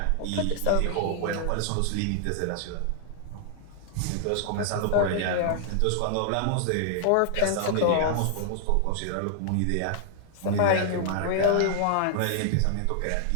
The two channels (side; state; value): both; different; correlation 0.00